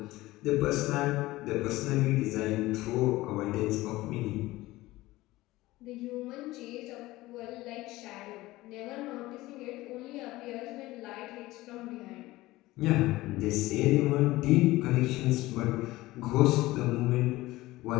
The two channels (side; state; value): right; quieter; 18.3 dB